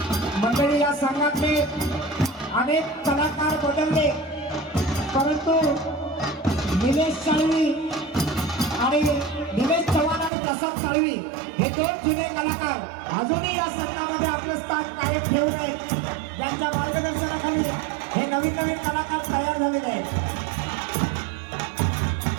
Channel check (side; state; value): left; drops out; at 10.3 s